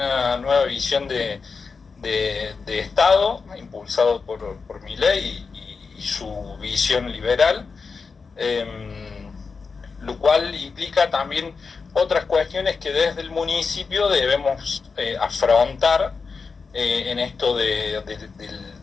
nueva visión de Estado, impulsado por Milei y su visión liberal, lo cual implica también otras cuestiones que desde el municipio debemos afrontar en esto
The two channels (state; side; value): quieter; right; 4.9 dB